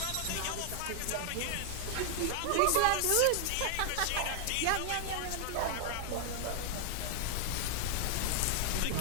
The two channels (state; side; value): different; both; correlation 0.00